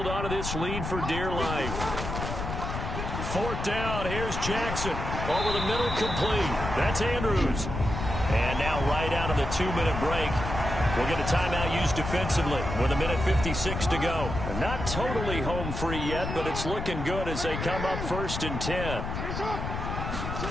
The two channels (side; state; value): left; noise; rumble, 5 dB below the sound